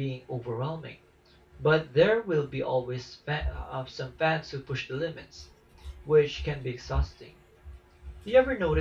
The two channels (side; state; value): both; identical; correlation 1.00